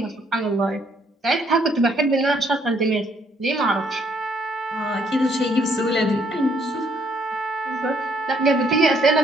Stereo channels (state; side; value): normal; both; correlation 0.68